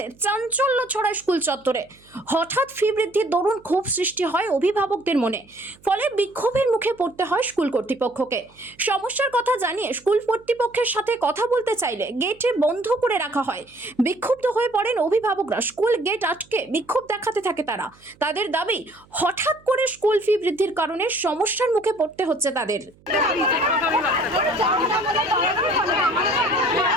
চাঞ্চল্য ছড়ায় স্কুল চত্বরে। হঠাৎ ফি বৃদ্ধির দরুন ক্ষোভ সৃষ্টি হয় অভিভাবকদের মনে, ফলে বিক্ষোভের মুখে পড়তে হয় স্কুল কর্তৃপক্ষকে। সমস্যার কথা জানিয়ে স্কুল কর্তৃপক্ষের সাথে কথা বলতে চাইলে গেটে বন্ধ করে রাখা হয়। বিক্ষুব্ধ হয়ে পড়েন অভিভাবকরা, স্কুল গেট আটকে বিক্ষোভ দেখাতে থাকে তারা। তাদের দাবি, হঠাৎ করে স্কুল ফি বৃদ্ধির কারণে সমস্যার মুখে পড়তে হচ্ছে তাদের।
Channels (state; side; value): noise; right; hum, 29 dB below the sound